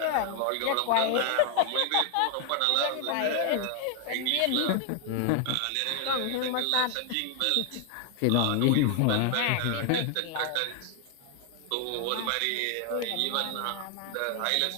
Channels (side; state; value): both; different; correlation 0.00